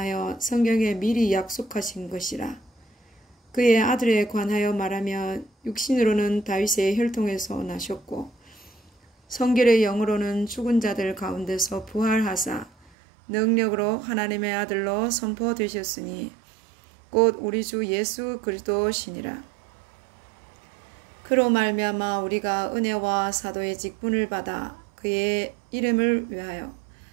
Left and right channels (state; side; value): drops out; left; at 12.9 s